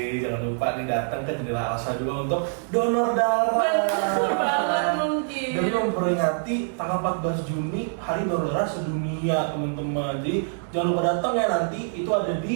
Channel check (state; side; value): silent; left; digital silence